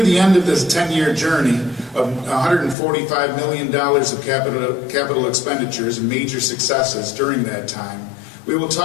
the end of this 10-year journey of $145 million of capital expenditures and major successes during that time, we will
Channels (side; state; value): right; drops out; at 2.8 s